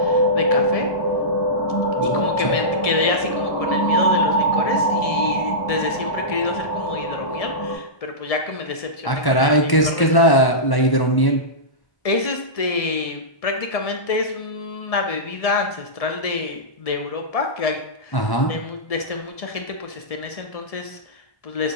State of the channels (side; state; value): right; late; 1.1 ms